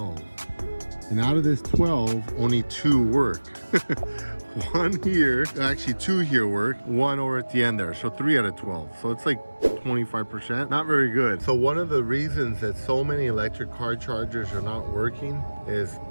And out of this 12, only 2 work. 1 here, actually 2 here work, 1 over at the end there. So 3 out of 12. So it's like 25%, not very good. So one of the reasons that so many electric car chargers are not working is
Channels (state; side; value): inverted; both; correlation -1.00